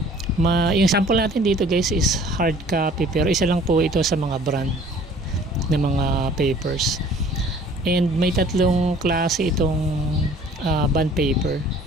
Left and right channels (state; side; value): normal; both; correlation 0.52